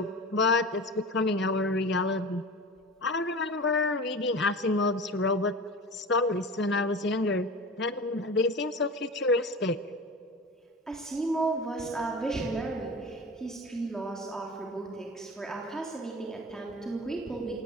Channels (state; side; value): normal; both; correlation 0.32